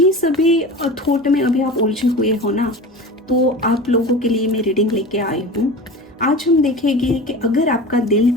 सभी थॉट में अभी आप उलझे हुए हो ना, तो आप लोगों के लिए मैं रीडिंग लेके आई हूँ। आज हम देखेंगे कि अगर आपका दिल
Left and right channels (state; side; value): normal; both; correlation 0.33